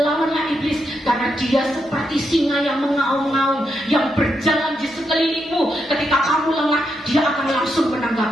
iblis karena dia seperti singa yang mengaum-ngaum, yang berjalan di sekelilingmu. Ketika kamu lengah, dia akan langsung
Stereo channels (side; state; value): both; normal; correlation 0.82